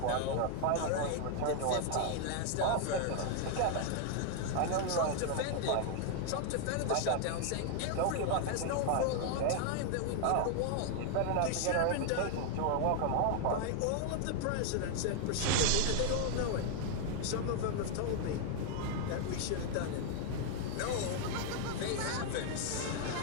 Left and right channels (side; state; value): both; different; correlation 0.00